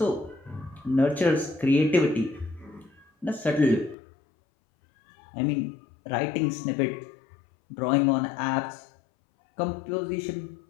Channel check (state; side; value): drops out; right; at 4.0 s